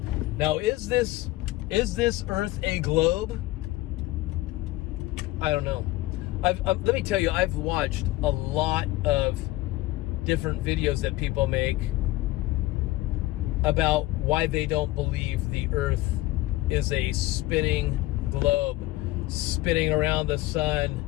Now, is this earth a globe? I don't know. Let me tell you, I've watched a lot of different videos that people make about why they don't believe the earth is a spinning globe, spinning around the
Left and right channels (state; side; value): quieter; right; 18.1 dB